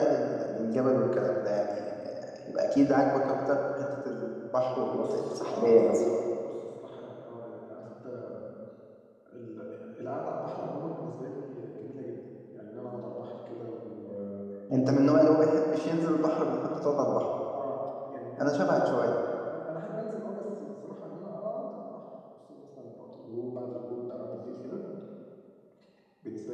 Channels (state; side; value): identical; both; correlation 1.00